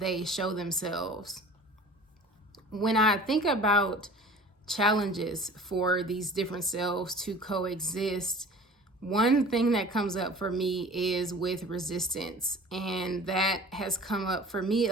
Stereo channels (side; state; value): both; normal; correlation 0.43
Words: show themselves. When I think about challenges for these different selves to coexist, one thing that comes up for me is with resistance. And that has come up for me